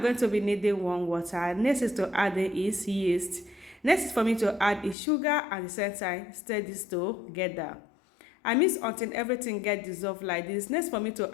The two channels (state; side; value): drops out; right; at 5.0 s